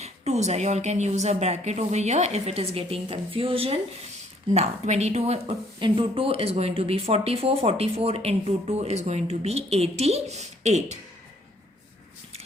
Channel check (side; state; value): both; normal; correlation 0.64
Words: twos are. You all can use a bracket over here if it is getting confusion. Now 22 into 2 is going to be 44. 44 into 2 is going to be 88.